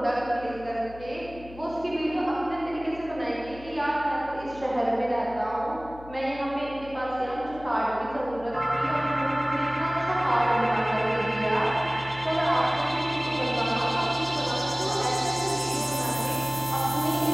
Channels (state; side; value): noise; left; hum, 17 dB below the sound